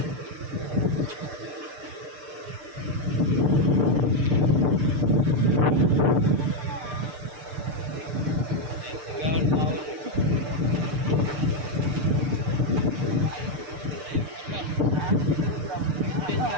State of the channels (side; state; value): left; late; 6.7 ms